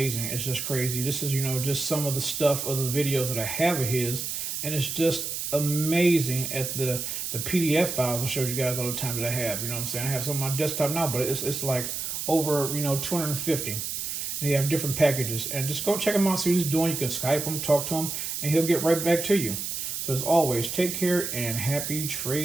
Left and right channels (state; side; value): noise; right; hiss, 4 dB below the sound